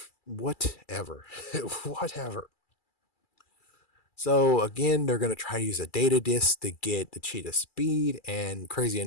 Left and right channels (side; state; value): right; late; 2.3 ms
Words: Whatever. Whatever. So again, they're going to try to use a data disk to get the cheetah speed. And crazy